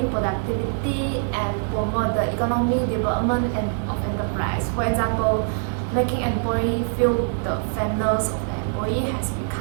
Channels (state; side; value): silent; left; digital silence